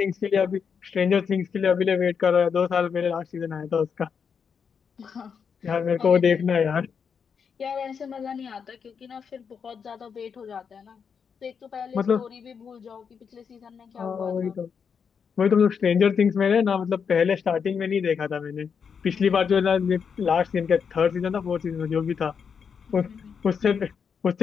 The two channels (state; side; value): quieter; right; 6.5 dB